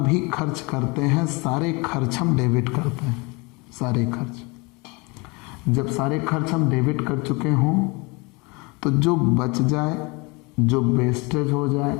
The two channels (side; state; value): right; quieter; 27.3 dB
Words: खर्च करते हैं सारे खर्च हम डेबिट करते हैं, सारे खर्च। जब सारे खर्च हम डेबिट कर चुके हों तो जो बच जाए, जो वेस्टेज हो जाए,